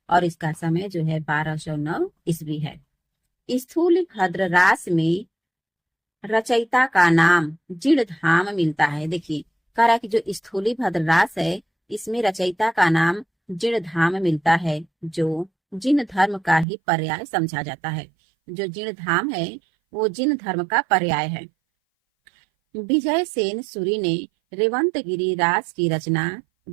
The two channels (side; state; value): left; drops out; at 16.7 s